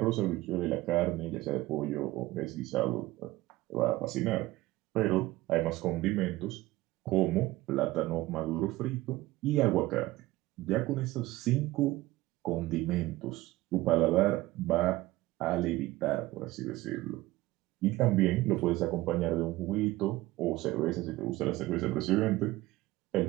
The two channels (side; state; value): left; quieter; 18.0 dB